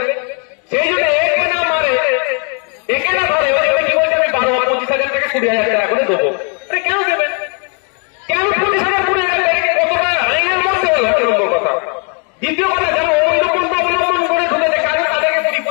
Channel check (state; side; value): quieter; right; 38.4 dB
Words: সেই জন্য একে না মারে, একে না ধরে, কি বলছে আমি 12-25,000 টাকা 20,000 টাকা করে দেবো। আরে কেন দেবেন? কেন 20,000 20,000 টাকা কতটা আইনের মধ্যে হলো? একটা নম্বর কথা। দ্বিতীয় কথা, যারা অবৈধ পন্থা অবলম্বন করে ঢুকেছে তাদেরকে